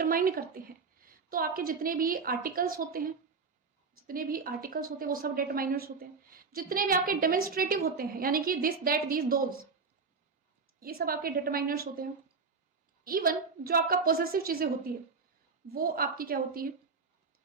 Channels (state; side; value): quieter; left; 4.8 dB